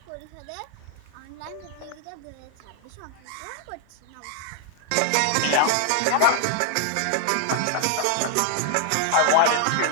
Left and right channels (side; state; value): both; different; correlation 0.00